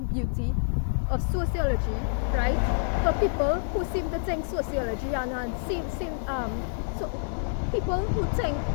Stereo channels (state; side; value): silent; right; digital silence